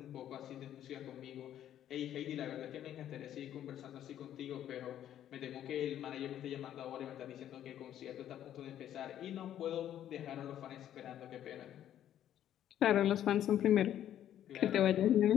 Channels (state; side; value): quieter; right; 11.1 dB